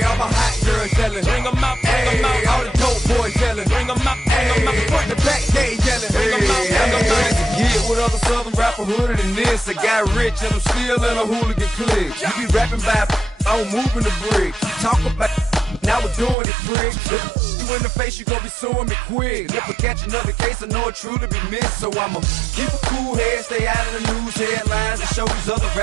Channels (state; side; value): drops out; left; at 16.4 s